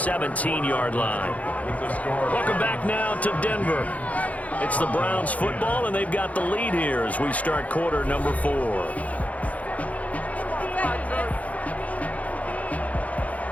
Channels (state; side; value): late; right; 0.070 ms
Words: line. Welcome back now to Denver. It's the Browns football, and they've got the lead here as we start quarter number 4.